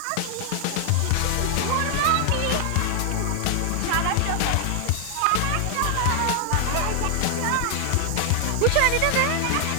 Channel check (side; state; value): both; different; correlation 0.00